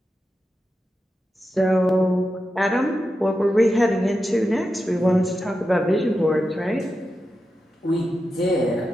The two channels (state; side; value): normal; both; correlation 0.89